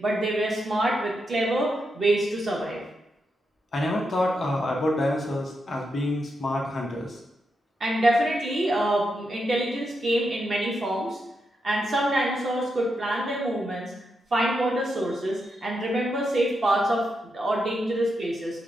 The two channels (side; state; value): both; normal; correlation 0.84